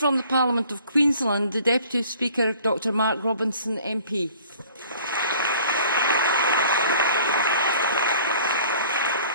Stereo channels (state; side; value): inverted; both; correlation -0.52